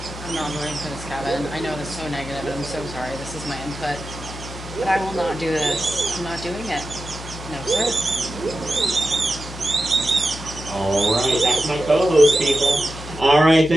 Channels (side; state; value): left; noise; hum, 12 dB below the sound